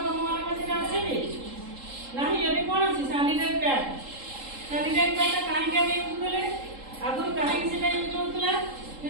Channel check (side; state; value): left; late; 3.7 ms